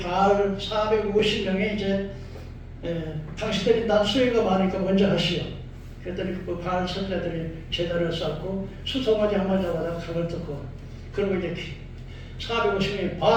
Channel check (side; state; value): both; identical; correlation 1.00